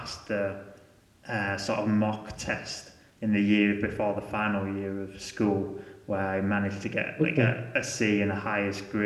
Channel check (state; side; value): identical; both; correlation 1.00